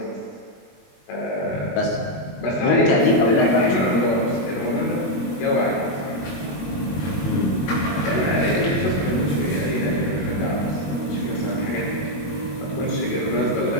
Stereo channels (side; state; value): right; late; 21 ms